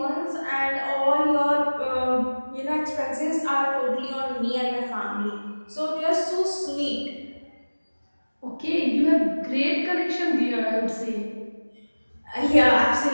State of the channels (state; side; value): inverted; both; correlation -1.00